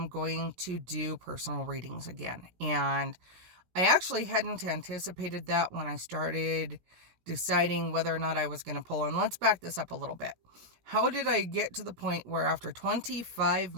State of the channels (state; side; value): late; left; 17 ms